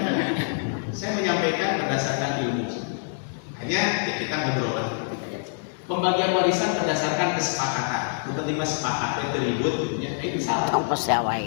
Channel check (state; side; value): silent; right; digital silence